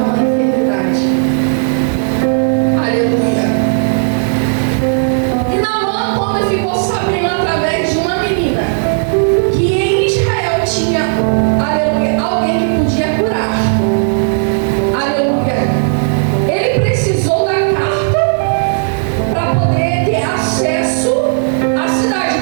enfermidade. Aleluia. E Naamã, quando ficou sabendo através de uma menina que em Israel tinha, aleluia, alguém que podia curar, aleluia, ele precisou da carta para poder ter acesso à cidade.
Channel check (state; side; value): silent; left; digital silence